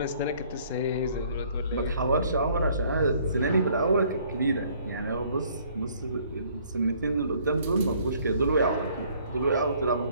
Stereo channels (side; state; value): both; inverted; correlation -0.61